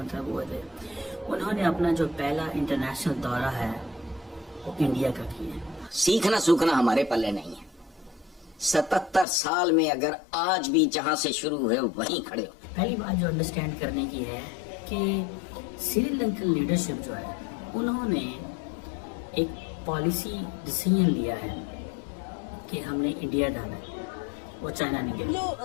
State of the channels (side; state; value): right; drops out; at 9.2 s